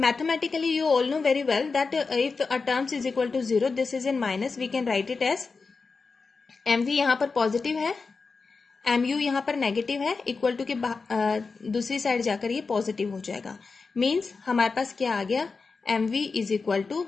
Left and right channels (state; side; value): quieter; right; 4.5 dB